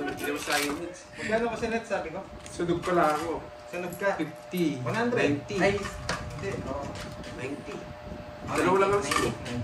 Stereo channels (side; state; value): both; identical; correlation 1.00